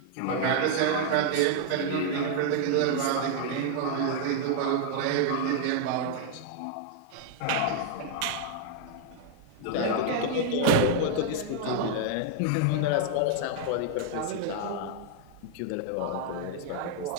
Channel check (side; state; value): both; different; correlation -0.01